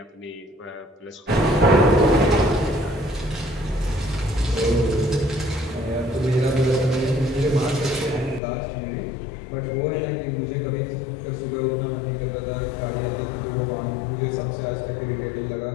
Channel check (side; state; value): right; drops out; at 8.4 s